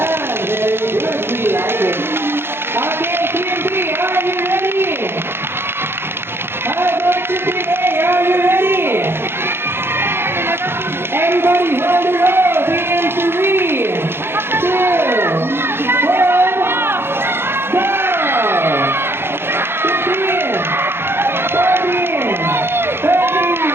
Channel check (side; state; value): left; late; 0.11 ms